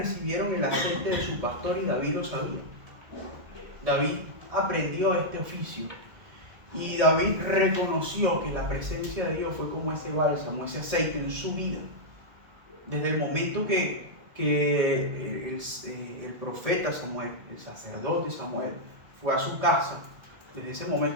el aceite de su pastor y David lo sabía. David aprendió este oficio y David reconoció que la presencia de Dios fue como ese bálsamo, ese aceite en su vida. Desde el momento que el profeta Samuel, el sacerdote Samuel, fue a su casa, desde ese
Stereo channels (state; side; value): late; left; 1.7 ms